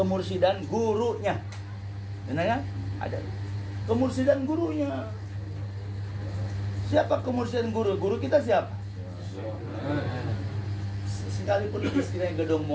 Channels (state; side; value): identical; both; correlation 1.00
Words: gurunya. Benar kan? Ada kemursidan gurunya. Siapa kemursidan guru? Guru kita siapa? Sekalipun istilahnya gedong